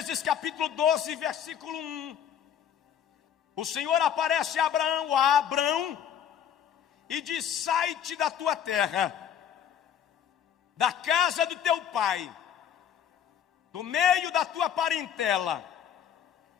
capítulo 12, versículo 1. O Senhor aparece a Abraão, e diz: sai-te da tua terra, da casa do teu pai, do meio da tua parentela,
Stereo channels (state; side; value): quieter; right; 9.2 dB